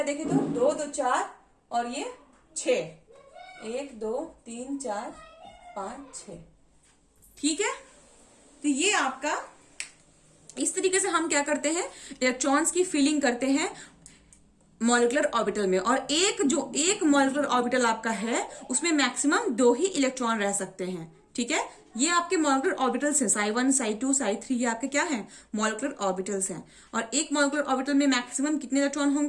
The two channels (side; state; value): both; identical; correlation 1.00